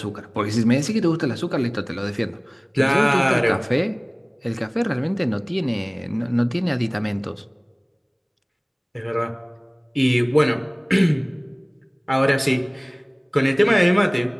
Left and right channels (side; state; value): both; identical; correlation 1.00